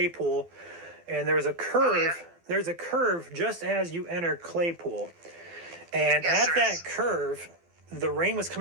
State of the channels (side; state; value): left; late; 12 ms